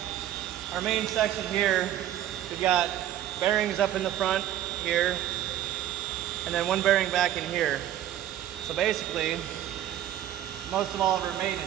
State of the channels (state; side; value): quieter; left; 12.0 dB